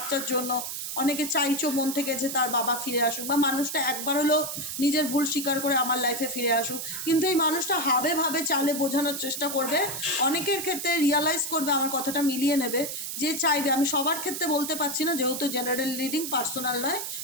জন্য। অনেকে চাইছো মন থেকে যে তার বাবা ফিরে আসুক, বা মানুষটা একবার হলো নিজের ভুল স্বীকার করে আমার লাইফে ফিরে আসুক। কিন্তু এই মানুষটা হাবে ভাবে চালে বোঝানোর চেষ্টা করবে। অনেকের ক্ষেত্রে রিয়ালাইজ করবে, আমার কথাটা মিলিয়ে নেবে, যে চাইবে। আমি সবার ক্ষেত্রে বলতে পারছি না, যেহেতু জেনারেল রিডিং, পার্সোনাল নয়।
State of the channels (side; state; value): right; noise; hiss, 5 dB below the sound